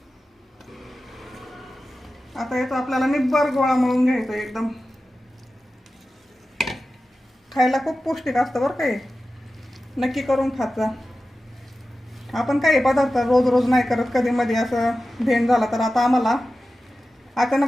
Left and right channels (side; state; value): both; normal; correlation 0.94